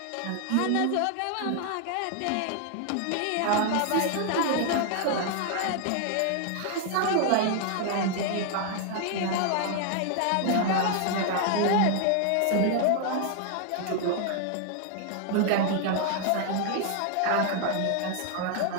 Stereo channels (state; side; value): different; both; correlation 0.00